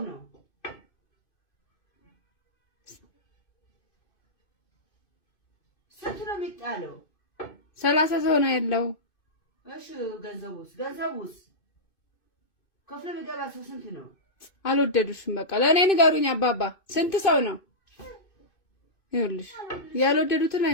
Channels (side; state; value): right; late; 2.5 ms